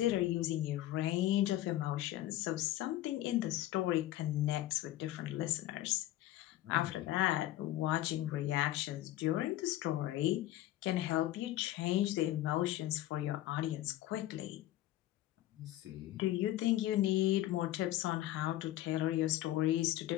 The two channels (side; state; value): right; quieter; 14.6 dB